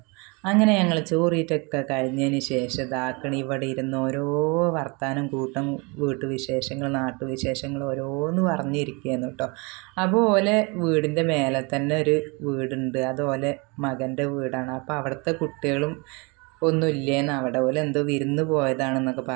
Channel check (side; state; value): left; quieter; 29.4 dB